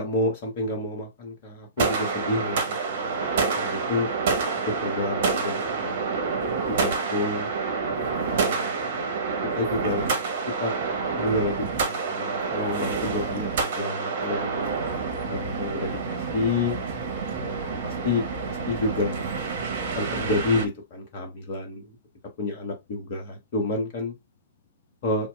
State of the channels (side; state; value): both; inverted; correlation -0.38